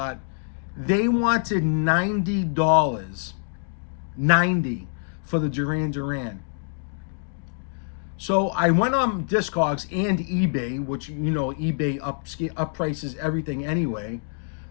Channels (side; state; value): right; silent; digital silence